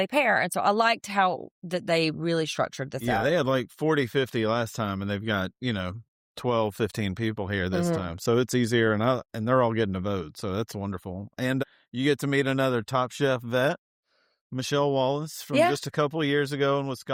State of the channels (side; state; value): both; identical; correlation 1.00